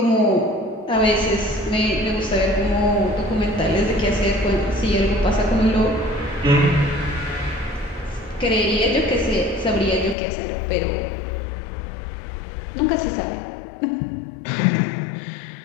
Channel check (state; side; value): drops out; right; at 10.2 s